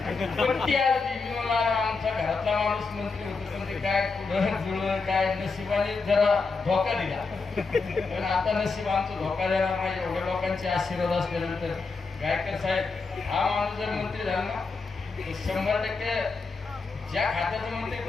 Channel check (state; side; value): quieter; right; 4.3 dB